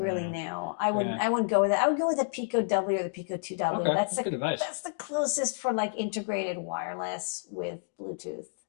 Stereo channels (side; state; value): right; silent; digital silence